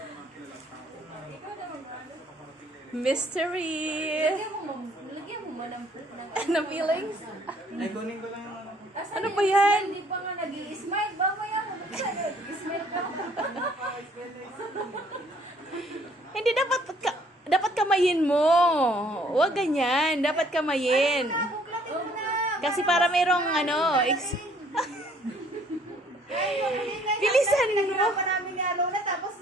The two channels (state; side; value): normal; both; correlation 0.61